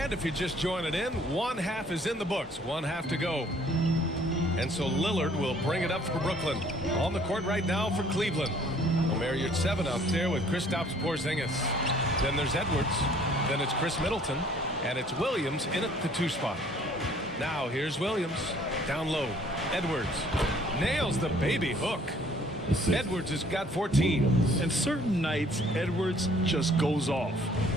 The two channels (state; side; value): normal; both; correlation 0.58